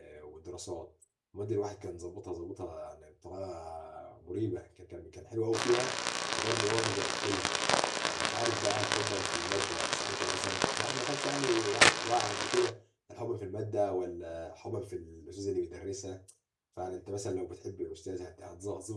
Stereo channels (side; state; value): both; identical; correlation 1.00